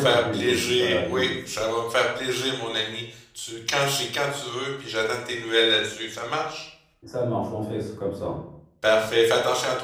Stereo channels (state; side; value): identical; both; correlation 1.00